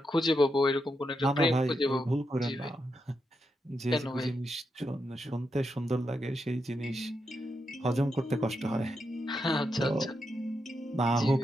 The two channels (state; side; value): normal; both; correlation 0.84